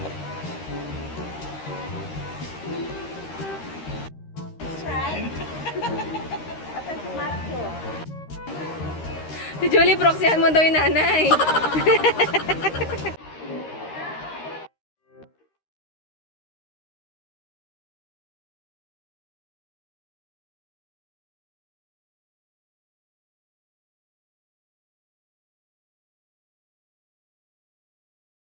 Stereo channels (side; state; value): right; late; 13 ms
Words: Si Julie, proxyhan mo daw yung nanay.